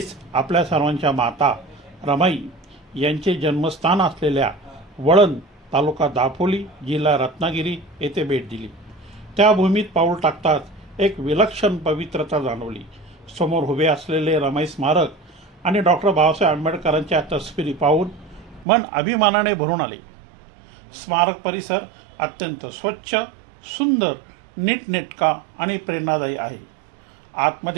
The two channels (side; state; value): left; drops out; at 18.7 s